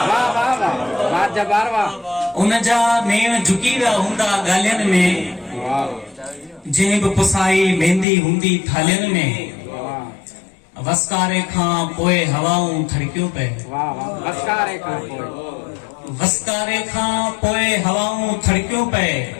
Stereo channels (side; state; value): right; drops out; at 8.1 s